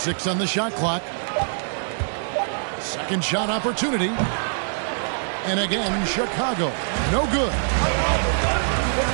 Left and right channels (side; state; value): left; silent; digital silence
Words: on the shot clock. Second shot opportunity. And again, Chicago. No good.